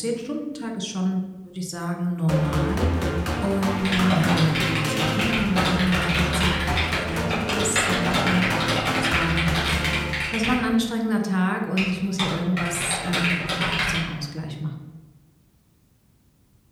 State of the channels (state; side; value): identical; both; correlation 1.00